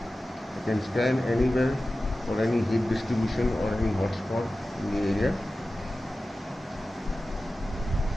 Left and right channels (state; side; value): normal; both; correlation 0.95